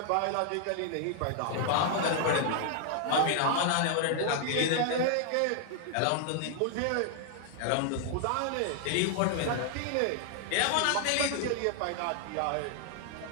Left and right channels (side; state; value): both; different; correlation 0.00